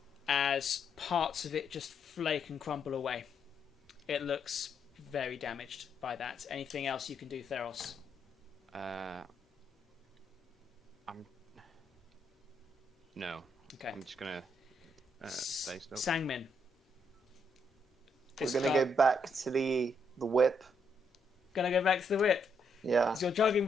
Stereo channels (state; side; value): normal; both; correlation 0.76